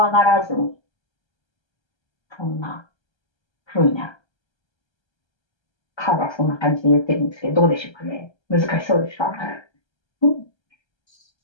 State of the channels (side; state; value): right; late; 1.3 ms